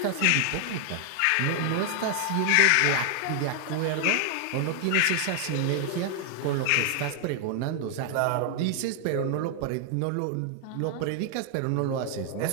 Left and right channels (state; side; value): different; both; correlation 0.00